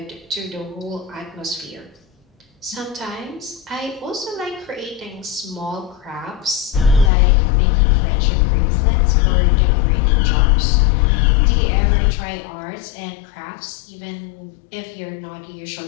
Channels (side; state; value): right; drops out; at 7.1 s